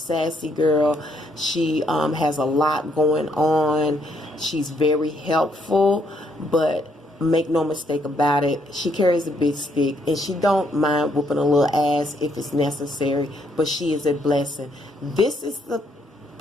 girl. She has a lot going on. She's very helpful, but make no mistake about it, she carries a big stick, and she don't mind whooping a little ass if it's necessary, but she is a blessing. This is the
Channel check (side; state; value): both; normal; correlation 0.72